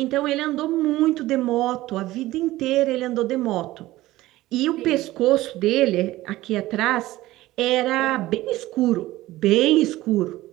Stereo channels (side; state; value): left; quieter; 17.0 dB